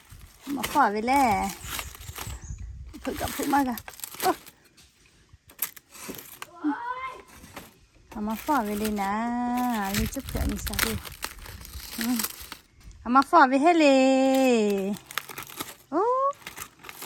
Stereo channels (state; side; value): identical; both; correlation 1.00